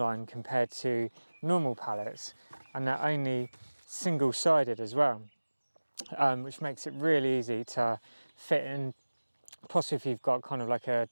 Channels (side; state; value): both; inverted; correlation -1.00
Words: compared to normal pallets, and they're only single-sided as well, which makes it really easy to fit in, possibly if you've got kind of like a